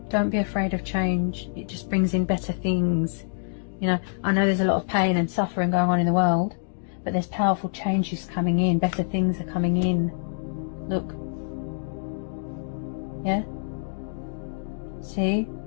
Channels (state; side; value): silent; right; digital silence